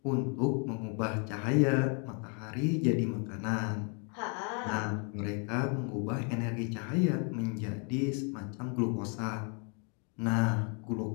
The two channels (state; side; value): quieter; right; 37.5 dB